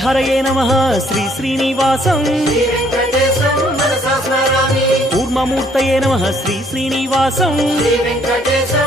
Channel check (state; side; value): normal; both; correlation 0.64